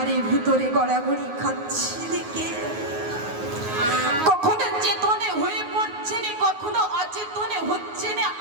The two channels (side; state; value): left; late; 9.5 ms